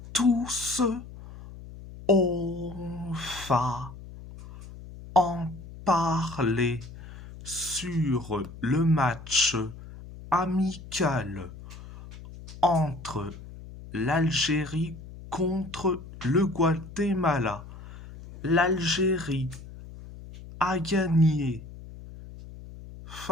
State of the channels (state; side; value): noise; left; hum, 15 dB below the sound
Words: tous, on va en parler sur le match amical entre l'Algérie contre le Guatemala. L'Algérie a gagné